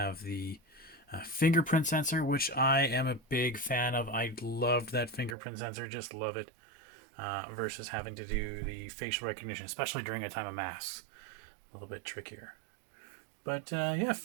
the fingerprint sensor, which I am a big fan of. I loved that fingerprint sensor, just love it, versus having to do the facial recognition, especially during a time of masks. A little bit trickier. But yeah,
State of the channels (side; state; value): left; drops out; at 5.4 s